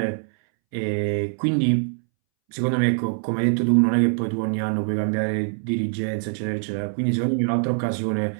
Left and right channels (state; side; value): silent; left; 63 dB below the other